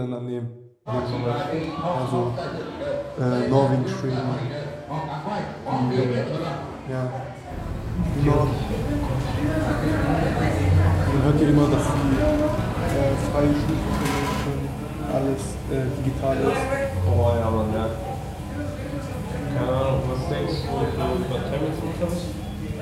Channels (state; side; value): identical; both; correlation 1.00